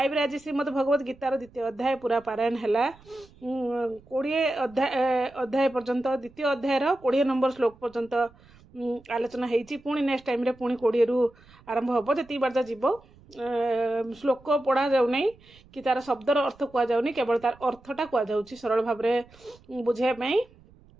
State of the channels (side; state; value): right; noise; rumble, 26 dB below the sound